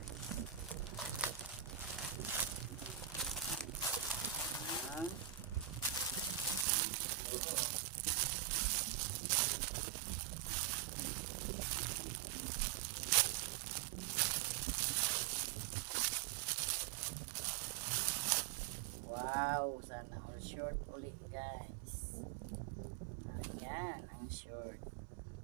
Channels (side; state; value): left; drops out; at 6.7 s